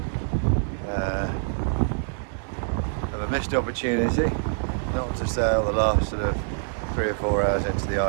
of a missed opportunity not to sail the last sort of 3 or 4 hours into the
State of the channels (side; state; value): left; silent; digital silence